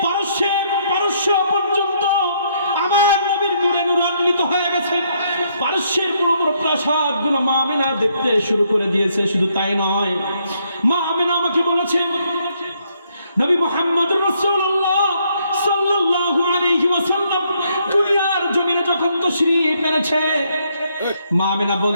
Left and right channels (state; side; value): inverted; both; correlation -0.72